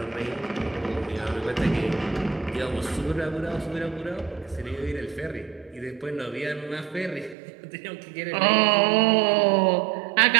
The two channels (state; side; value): drops out; left; at 7.4 s